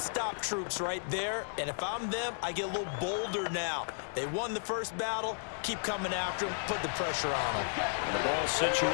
troops right there. And if I'm them, I get a little bolder now. They won the first battle. Keep coming after them. Put the pressure on them. And the ball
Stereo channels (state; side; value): silent; right; 55 dB below the other